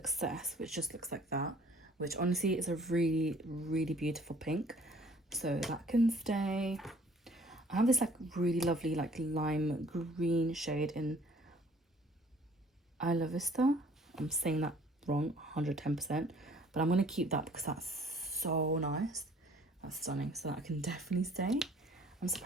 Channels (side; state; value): both; normal; correlation 0.56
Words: which just looks like that, which honestly is a really, really beautiful pink, so that can stay. I have this like really lovely like lime green shade in Isla Vista. I'm saying that wrong 110%, but I'm going to keep that because that's so nice. That's stunning, so that can definitely stay. I'm